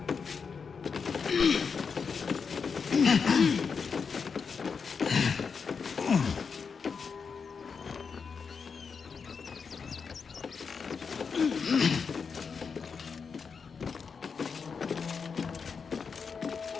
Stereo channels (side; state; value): right; quieter; 5.7 dB